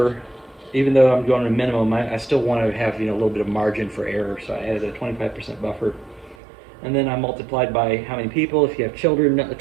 Even though I'm going to minimum, I still want to have a little bit of margin for error, so I added a 25% buffer. And then I multiplied by how many people. If you have children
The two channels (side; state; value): left; drops out; at 6.4 s